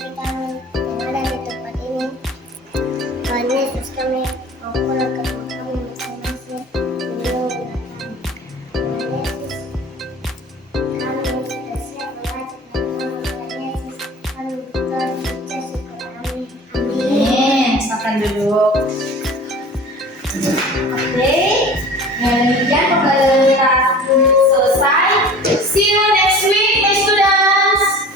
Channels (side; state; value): both; normal; correlation 0.41